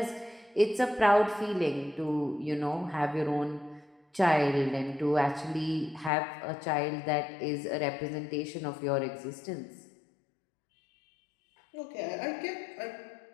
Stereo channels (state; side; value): drops out; right; at 6.1 s